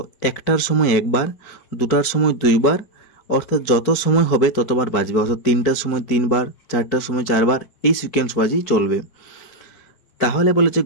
একটার সময় একবার, দুটার সময় দুইবার, অর্থাৎ যত সময় হবে ততবার বাজবে, অর্থাৎ তিনটার সময় তিনবার, চারটার সময় চারবার, এই সিকোয়েন্স বাজেই চলবে। তাহলে বলেছে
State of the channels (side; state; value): right; late; 4.5 ms